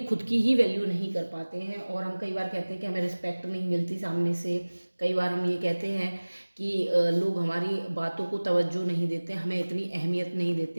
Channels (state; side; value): inverted; both; correlation -1.00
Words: खुद की ही वैल्यू नहीं कर पाते हैं। और हम कई बार कहते हैं कि हमें रिस्पेक्ट नहीं मिलती सामने से। कई बार हम ये कहते हैं कि लोग हमारी बातों को तवज्जो नहीं देते, हमें इतनी अहमियत नहीं